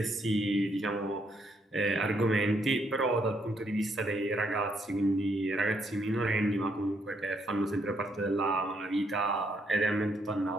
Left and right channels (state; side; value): normal; both; correlation 0.73